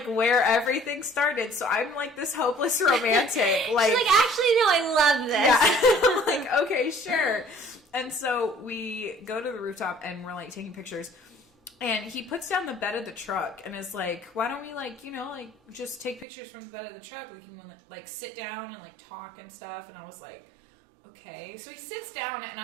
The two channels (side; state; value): left; drops out; at 16.2 s